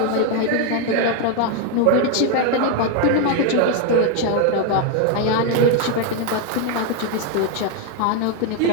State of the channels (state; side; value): different; both; correlation 0.01